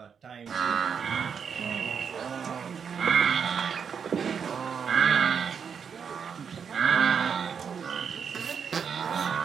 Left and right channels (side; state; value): left; quieter; 6.8 dB